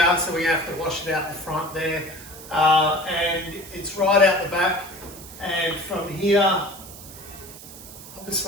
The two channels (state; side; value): noise; right; hiss, 16 dB below the sound